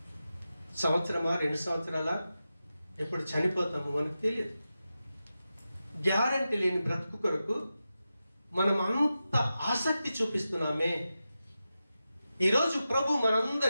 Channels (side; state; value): both; inverted; correlation -0.92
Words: సంవత్సరమా, 2 సంవత్సరాల, ఎప్పుడు చనిపోతామో మనకు తెలియదు. గ్యారంటీ లేని బ్రతుకు కొరకు మనం అంత ఆసక్తి చూపిస్తున్నామే. ఈరోజు ప్రభు